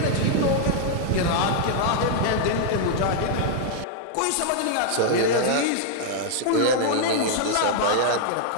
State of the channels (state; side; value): different; both; correlation 0.00